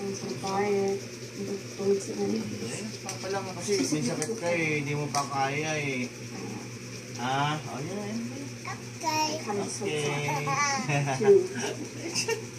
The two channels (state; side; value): identical; both; correlation 1.00